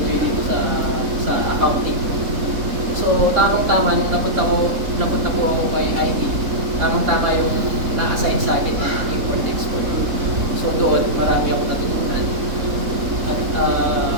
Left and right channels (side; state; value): left; late; 3.6 ms